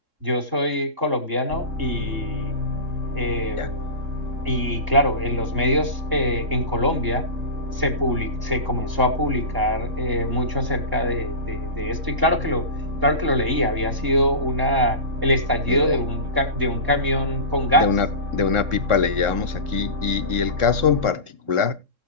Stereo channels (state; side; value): late; left; 3.7 ms